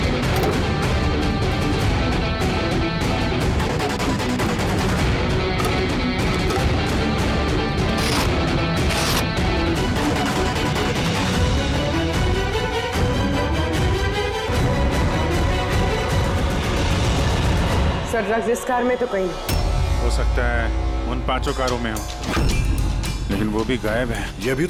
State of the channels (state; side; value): identical; both; correlation 1.00